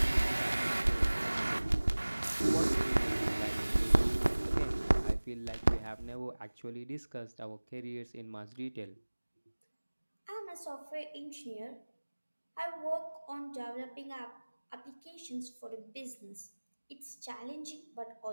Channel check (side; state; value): both; inverted; correlation -1.00